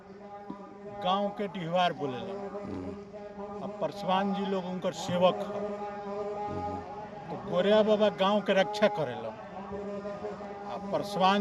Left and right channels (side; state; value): both; identical; correlation 1.00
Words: गांव के डिहवार बोले अब परसवान जी लोग उनकर सेवक है। तो गोरिया बाबा गांव के रक्षा करेला।